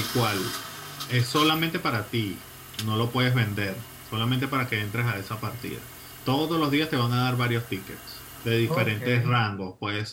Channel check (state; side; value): identical; both; correlation 1.00